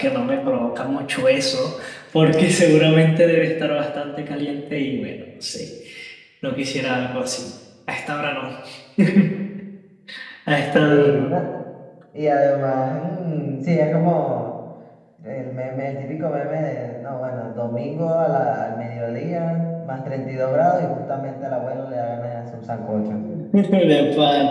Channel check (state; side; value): identical; both; correlation 1.00